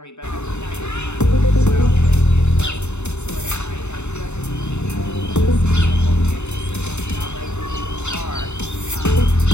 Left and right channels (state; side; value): late; right; 0.82 ms